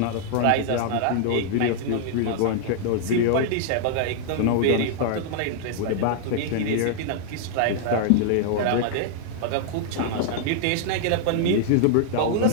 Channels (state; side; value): different; both; correlation -0.01